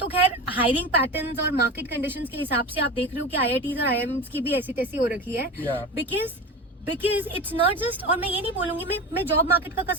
तो खैर हायरिंग पैटर्न्स और मार्केट कंडीशंस के हिसाब से आप देख रहे हो कि IITs और IIMs की भी ऐसी तैसी हो रखी है. Yeah. Because it's not just, और मैं ये नहीं बोलूंगी, मैं जॉब मार्केट का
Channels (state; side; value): normal; both; correlation 0.28